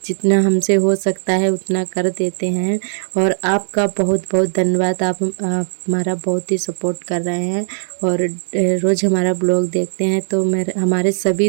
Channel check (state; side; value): silent; left; 67 dB below the other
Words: जितना हमसे हो सकता है उतना कर देते हैं। और आपका बहुत बहुत धन्यवाद। आप हमारा बहुत ही सपोर्ट कर रहे हैं और रोज़ हमारा ब्लॉग देखते हैं। तो मेरे हमारे सभी